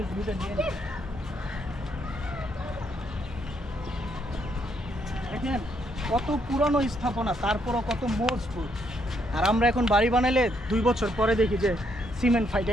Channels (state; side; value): normal; both; correlation 0.74